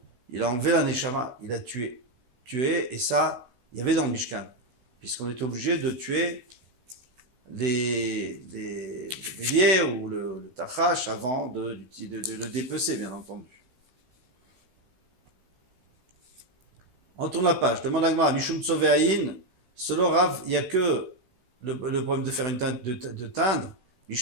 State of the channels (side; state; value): left; late; 16 ms